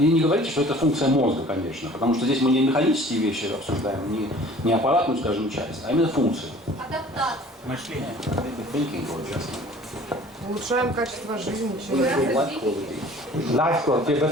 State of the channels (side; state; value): both; normal; correlation 0.49